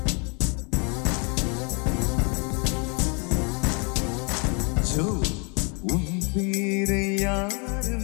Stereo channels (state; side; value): quieter; right; 33.9 dB